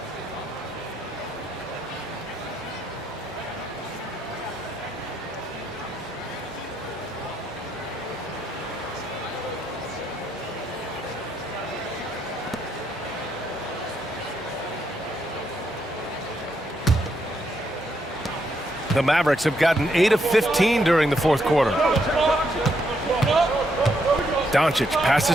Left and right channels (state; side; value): normal; both; correlation 0.77